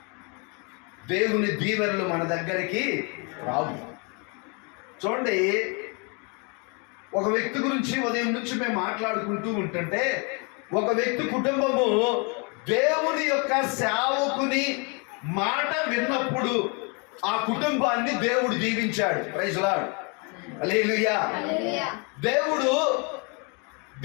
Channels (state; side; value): quieter; right; 33.6 dB